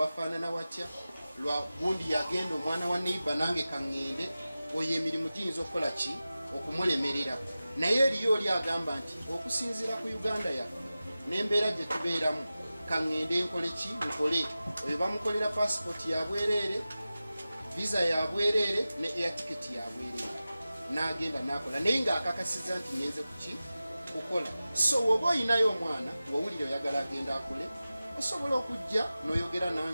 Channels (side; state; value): both; inverted; correlation -0.95